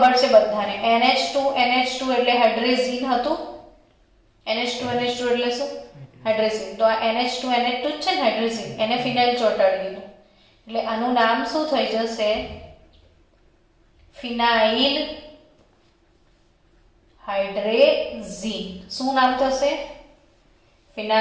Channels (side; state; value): both; identical; correlation 1.00